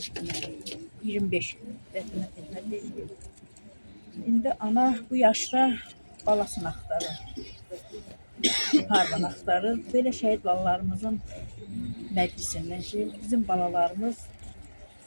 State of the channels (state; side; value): inverted; both; correlation -1.00